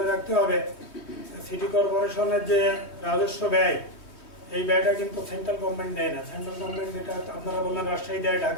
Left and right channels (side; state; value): right; late; 3.2 ms